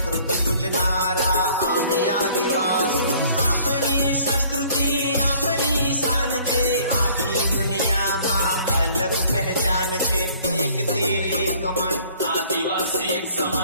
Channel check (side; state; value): both; inverted; correlation -0.56